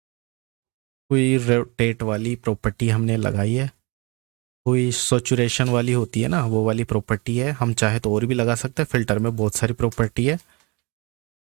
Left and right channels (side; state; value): left; quieter; 27.3 dB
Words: कोई रोटेट वाली प्रॉपर्टी हमने लगाई है, कोई सैचुरेशन वाली होती है ना वो वाली प्रॉपर्टी है। हम चाहे तो और भी लगा सकते हैं, फिल्टर में बहुत सारी प्रॉपर्टी है।